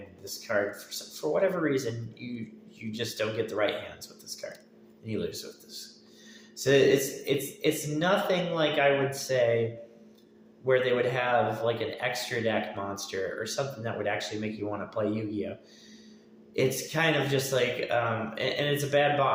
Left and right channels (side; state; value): both; identical; correlation 1.00